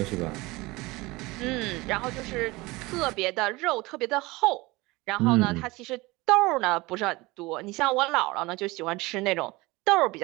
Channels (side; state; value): left; quieter; 22.1 dB